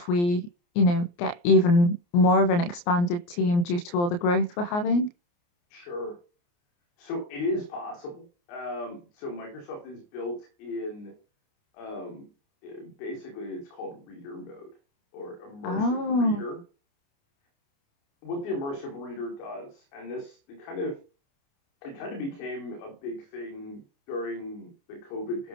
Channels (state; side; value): late; right; 29 ms